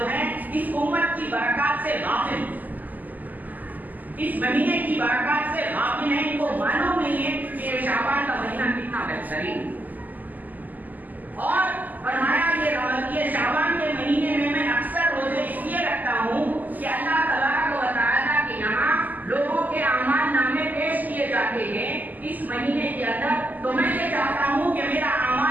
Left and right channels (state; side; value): late; left; 0.083 ms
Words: ہیں اس امت کی برکات سے غافل اس مہینے کی برکات سے غافل ہیں. ان کو معلوم نہیں ہے کہ یہ شعبان کا مہینہ کتنا بہترین. اور فرمایا یہ شعبان کے مہینے میں اکثر روزے اس لیے رکھتا ہوں کہ اللہ تبارک و تعالیٰ کے یہاں لوگوں کے اعمال نامے پیش کیے جاتے ہیں اس مہینے کے اندر. تو میں یہ چاہتا ہوں کہ میرا